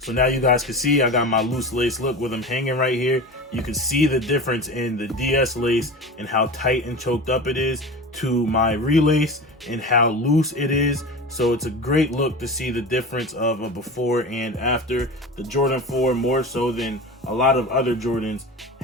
now you guys can see I got my loose lace look with them hanging right here. You can see the difference in the DS lace and how tight and choked up it is to my relace and how loose it is. So it's a great look to see the difference of a before and after. The Jordan 4, more so than a lot of other Jordans,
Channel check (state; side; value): normal; both; correlation 0.30